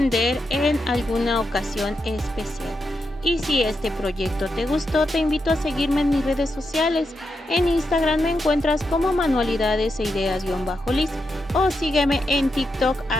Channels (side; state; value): both; normal; correlation 0.85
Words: en alguna ocasión especial. Y si este proyecto te gustó, te invito a seguirme en mis redes sociales. En Instagram me encuentras como manualidades e ideas-liz o sígueme en TikTok